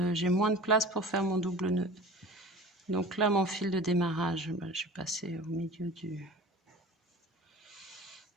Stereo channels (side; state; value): both; normal; correlation 0.39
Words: moins de place pour faire mon double nœud. Donc là, mon fil de démarrage, je vais passer au milieu du...